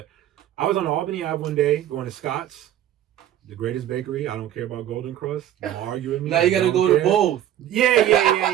I was on Albany Ave one day going to Scott's, the greatest bakery. I don't care about Golden Crust. Don't argue with me. Now you gotta go to both.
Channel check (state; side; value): quieter; left; 11.8 dB